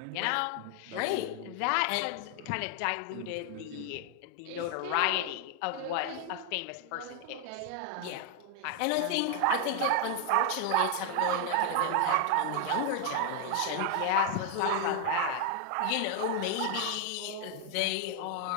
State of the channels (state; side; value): different; both; correlation 0.01